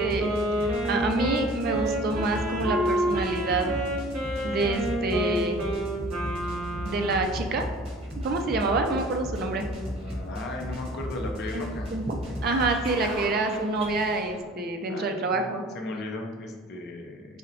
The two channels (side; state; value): both; normal; correlation 0.47